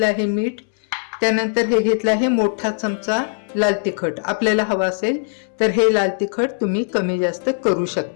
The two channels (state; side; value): silent; right; 66 dB below the other